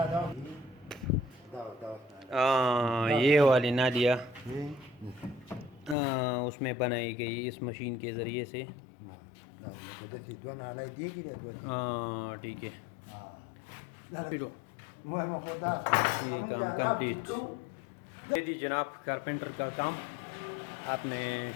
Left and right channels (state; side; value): drops out; right; at 6.0 s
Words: ये वाली नालियाँ उसमें बनाई गई इस मशीन के ज़रिए से। हाँ ठीक है, ये काम कंप्लीट। यदि जनाब कारपेंटर का काम आपने